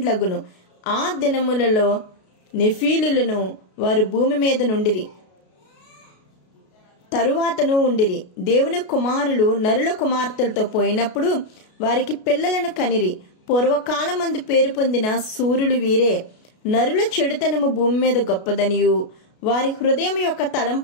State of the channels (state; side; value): late; right; 33 ms